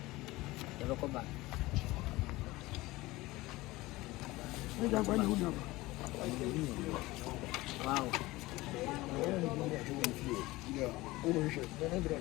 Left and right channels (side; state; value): right; quieter; 19.7 dB